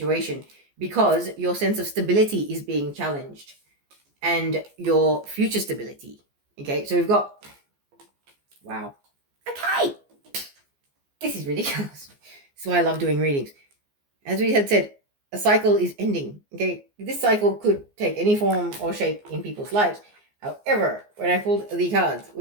because your sense of stability is being challenged and your future stability. Okay, so we've got, wow. Okay. This is ridiculous. This is why I love doing readings. As we had said, a cycle is ending. Okay, this cycle could take any form or shape in people's lives. However, when I pulled the cards,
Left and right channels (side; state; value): left; late; 14 ms